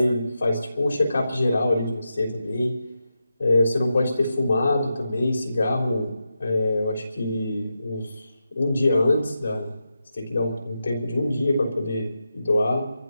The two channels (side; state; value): both; inverted; correlation -0.88